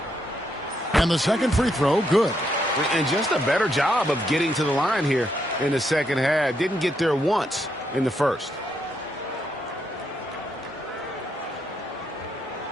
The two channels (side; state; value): both; normal; correlation 0.78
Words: And the second free throw, good. And just a better job of getting to the line here in the second half. Didn't get there once in the first.